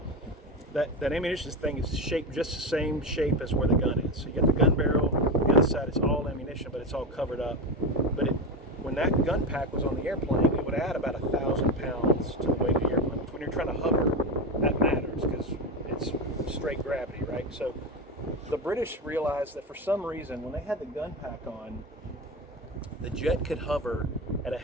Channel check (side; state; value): both; normal; correlation 0.18